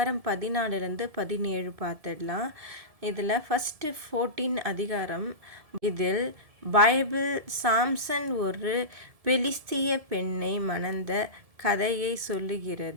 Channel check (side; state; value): left; late; 1.7 ms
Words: 14 17 பார்த்துடலாம். இதில் ஃபஸ்ட்டு 14 அதிகாரம். இதில் பைபிள் சாம்சன் ஒரு பெலிஸ்திய பெண்ணை மணந்த கதையை